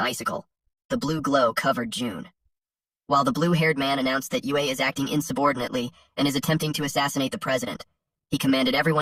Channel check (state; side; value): identical; both; correlation 1.00